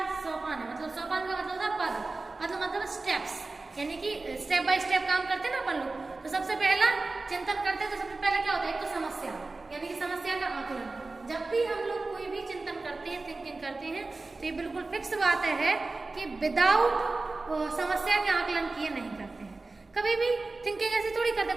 सोपान है, मतलब सोपान का मतलब था पद, मतलब स्टेप्स, यानी कि स्टेप बाय स्टेप काम करते हैं ना अपन लोग। तो सबसे पहला चिंतन करते हैं तो सबसे पहले क्या होता है, एक तो समस्या, यानी कि समस्या का आकलन। जब भी हम लोग कोई भी चिंतन करते हैं, थिंकिंग करते हैं, तो ये बिल्कुल फिक्स बात है कि विदाउट समस्या के आकलन किए नहीं करते हैं। कभी भी थिंकिंग ऐसी थोड़ी करते,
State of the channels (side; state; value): left; quieter; 3.5 dB